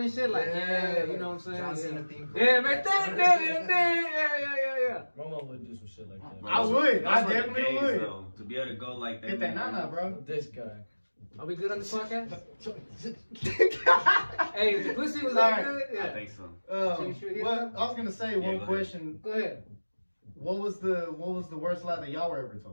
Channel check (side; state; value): both; inverted; correlation -1.00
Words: shit. Like, yeah, you know what I'm saying? John Yeah. Cena theme. Yeah, man, yeah. My mom would do some shit like that. I would. I Those were the definitely days, would. though, to be able to go like that. Hit that nana, bro. This guy. Are we good on this podcast? Hey, if the pussy was Alright. that good, I yeah. think so. Um, you sure you what did? I was gonna say, Yeah, go one ahead. question. Go ahead. What was the worst lie that y'all were ever